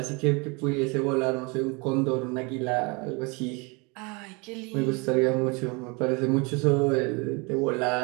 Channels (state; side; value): quieter; left; 29.2 dB